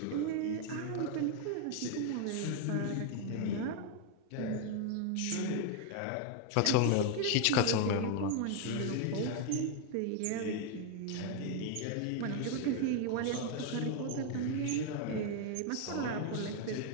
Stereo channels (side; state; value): both; different; correlation 0.00